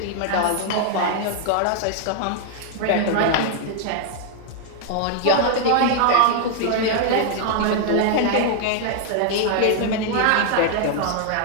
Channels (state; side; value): different; both; correlation 0.00